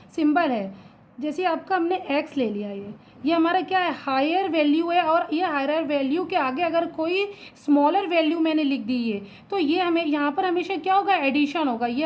सिंबल है, जैसे आपका हमने x ले लिया, ये हमारा क्या है, हायर वैल्यू है, और ये हायर वैल्यू के आगे अगर कोई स्मॉलर वैल्यू मैंने लिख दी है तो ये हमें यहाँ पर हमेशा क्या होगा, एडिशन होगा. ये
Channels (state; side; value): identical; both; correlation 1.00